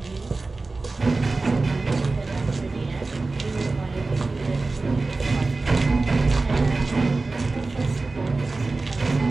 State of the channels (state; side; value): quieter; left; 3.5 dB